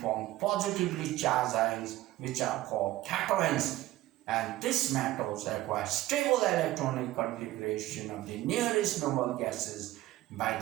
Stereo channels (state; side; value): quieter; left; 16.1 dB